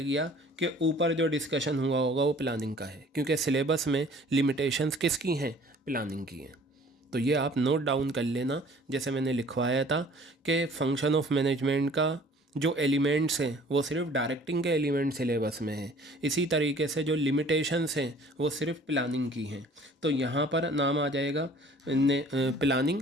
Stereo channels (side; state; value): both; normal; correlation 0.52